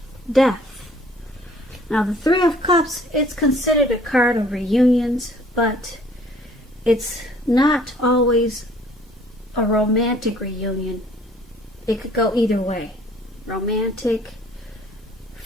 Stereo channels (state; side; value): normal; both; correlation 0.56